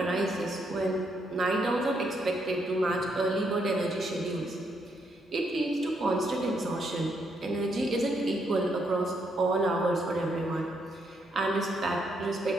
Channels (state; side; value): normal; both; correlation 0.76